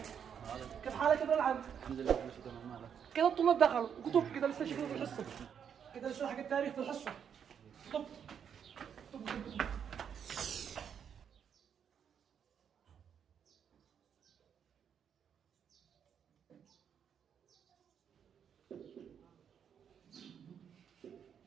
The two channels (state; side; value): quieter; left; 7.9 dB